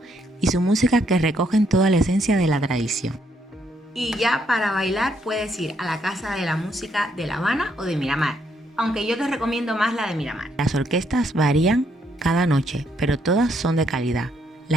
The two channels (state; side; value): normal; both; correlation 0.73